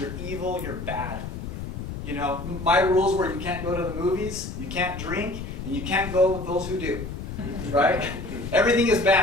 you're evil, you're bad. My rules were you can't go to the movies, you can't drink, and you can't go with those who do, right? Everything is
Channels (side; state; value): left; noise; rumble, 7 dB below the sound